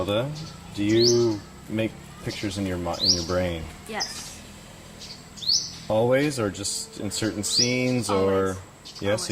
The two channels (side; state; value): both; identical; correlation 1.00